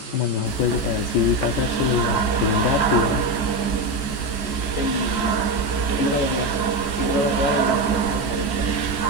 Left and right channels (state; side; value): late; right; 14 ms